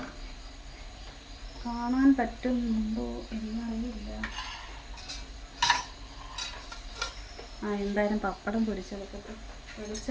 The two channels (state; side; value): identical; both; correlation 1.00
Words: കാണാൻ പറ്റുന്നുണ്ടോ എന്നറിയില്ല. എന്തായാലും പപ്പടം പൊരിച്ചെടുക്കട്ടെ.